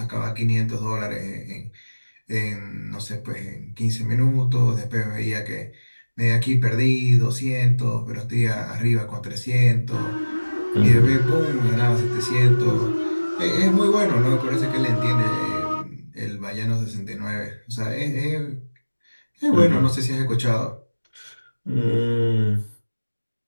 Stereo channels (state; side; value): inverted; both; correlation -1.00